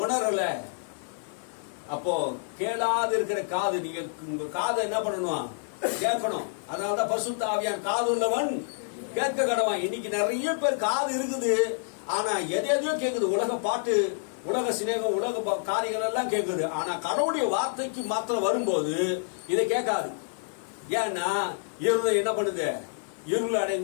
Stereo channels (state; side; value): silent; right; 59 dB below the other